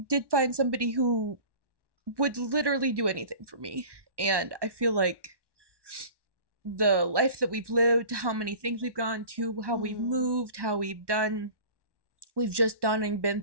did find somebody who would literally do anything for me. And I feel like the life that we've lived, how many things we've gone to, how we've moved, how we've just done and been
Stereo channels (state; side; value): late; left; 1.1 ms